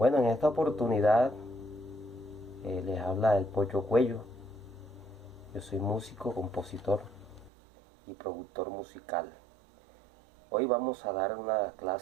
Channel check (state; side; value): drops out; left; at 7.5 s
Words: en esta oportunidad les habla el Pocho Cuello. Yo soy músico, compositor y productor musical. Hoy vamos a dar una